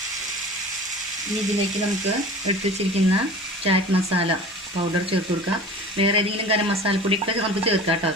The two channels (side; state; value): both; normal; correlation 0.39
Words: ഇനി ഇതിലേക്ക് നമുക്ക് എടുത്ത് വെച്ചിരിക്കുന്ന ചാറ്റ് മസാല പൗഡർ ചേർത്ത് കൊടുക്കാം. വേറെ ഏതെങ്കിലും ഗരം മസാലപ്പൊടിയൊക്കെ നമുക്ക് ചേർക്കാം കേട്ടോ.